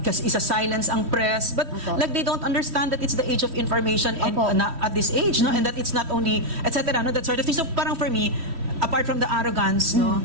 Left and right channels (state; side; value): late; left; 3.1 ms